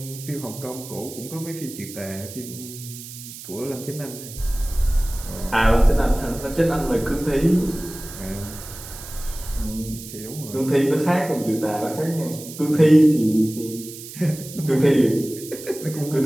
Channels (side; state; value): right; noise; hiss, 13 dB below the sound